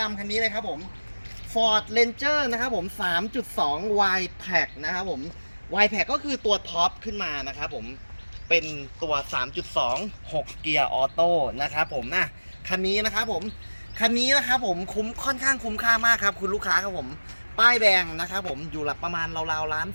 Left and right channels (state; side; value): inverted; both; correlation -1.00